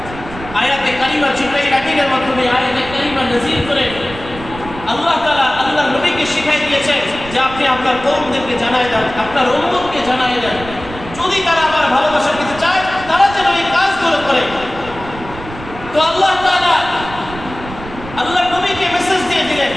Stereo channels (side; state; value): right; noise; rumble, 13 dB below the sound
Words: আয়াতে কারিমা জিবরাইল আমিনের মাধ্যমে আয়াতে কারিমা নাযিল করে আল্লাহ তাআলা আল্লাহর নবীকে শিখাই দিয়েছেন যে আপনি আপনার কওমদেরকে জানায় দেন, আপনার উম্মতকে জানায় দেন, যদি তারা আমার ভালোবাসা পেতে চায় তারা যেন এই কাজগুলো করে। তো আল্লাহ তাআলা আল্লাহর নবীকে মেসেজ দিয়ে দিলেন,